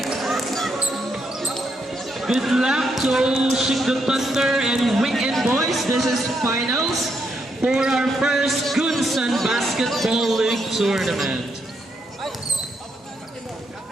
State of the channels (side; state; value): both; normal; correlation 0.78